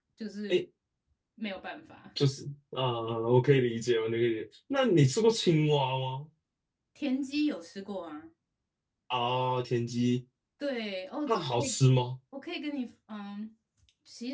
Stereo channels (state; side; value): identical; both; correlation 1.00